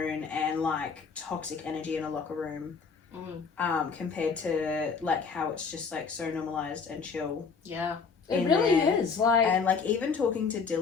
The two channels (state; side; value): quieter; right; 5.4 dB